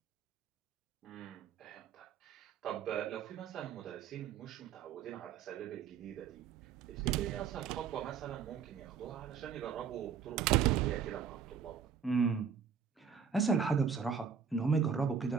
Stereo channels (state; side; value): quieter; left; 7.0 dB